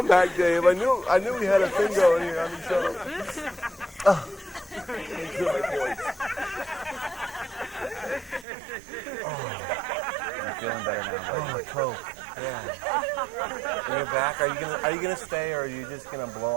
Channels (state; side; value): drops out; left; at 8.5 s